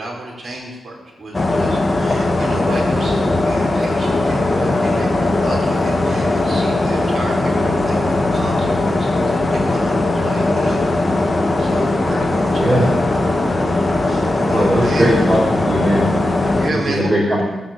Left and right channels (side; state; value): both; normal; correlation 0.91